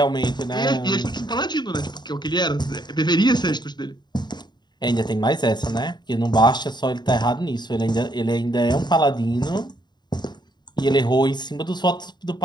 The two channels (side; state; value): right; late; 0.21 ms